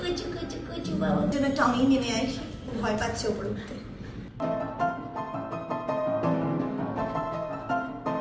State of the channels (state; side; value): identical; both; correlation 1.00